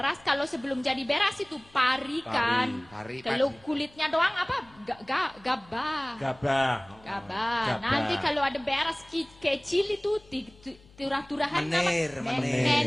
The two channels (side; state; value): left; noise; hum, 26 dB below the sound